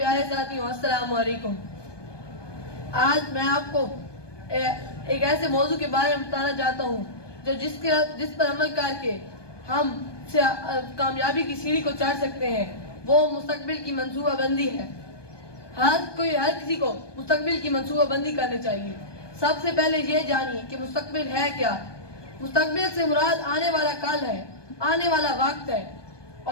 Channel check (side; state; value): right; late; 1.2 ms